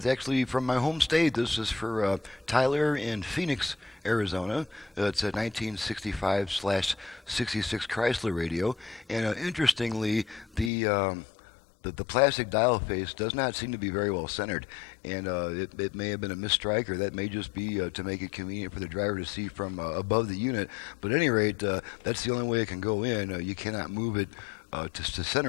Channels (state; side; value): drops out; right; at 10.7 s